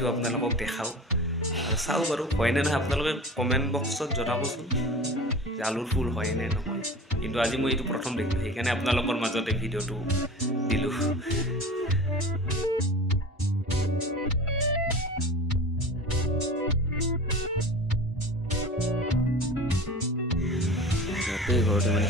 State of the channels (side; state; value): both; normal; correlation 0.36